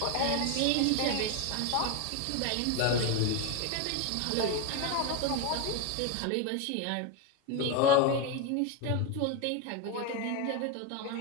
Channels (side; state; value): both; different; correlation 0.02